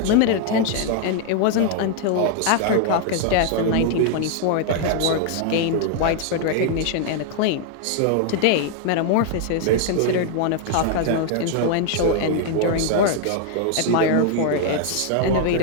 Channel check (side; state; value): both; different; correlation 0.00